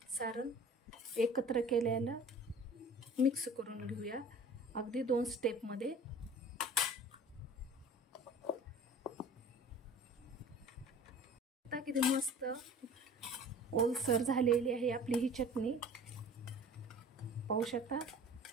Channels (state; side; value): normal; both; correlation 0.44